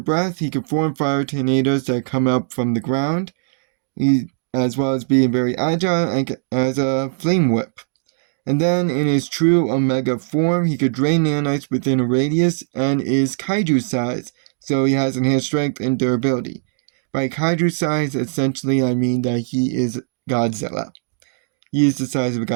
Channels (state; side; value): silent; left; digital silence